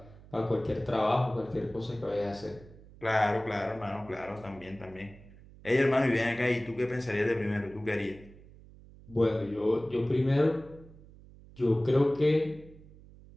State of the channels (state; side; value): noise; right; hum, 21 dB below the sound